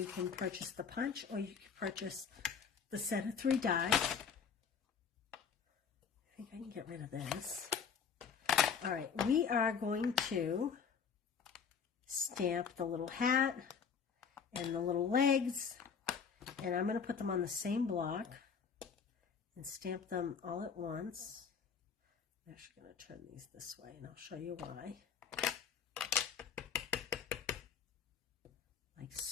can purchase the punch or you can purchase the set of 3 dies. I think I can get rid of this. All right, we are going to stamp the little hat and the little legs, and I'm going to put them on the same block and stamp them all at once. I'm actually going to turn these this way, and I'll show you why. Like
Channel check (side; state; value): right; quieter; 6.5 dB